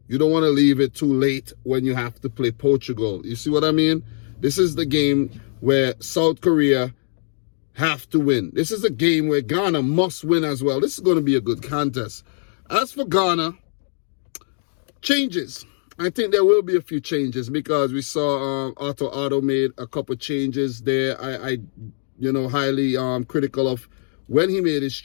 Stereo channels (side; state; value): right; silent; digital silence